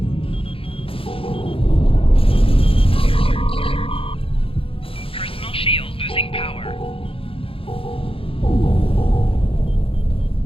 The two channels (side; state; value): right; late; 0.27 ms